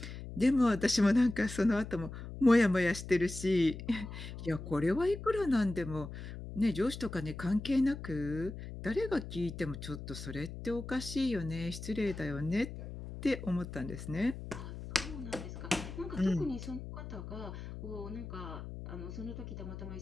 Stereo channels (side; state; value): left; noise; hum, 10 dB below the sound